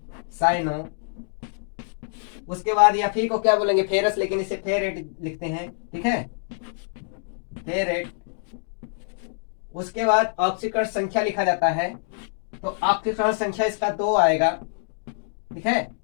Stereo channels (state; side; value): silent; right; digital silence